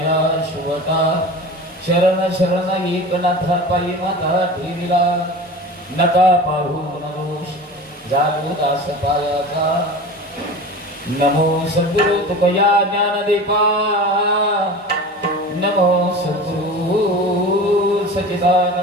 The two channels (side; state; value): both; normal; correlation 0.34